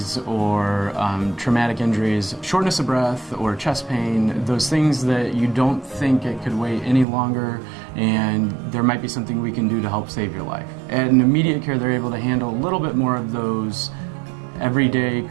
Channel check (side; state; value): left; drops out; at 7.1 s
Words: or traumatic injuries, shortness of breath or chest pain, those things that you don't think it could wait any longer and there might be something we can do to help save your life. At an immediate care, they're able to handle a little bit more of those everyday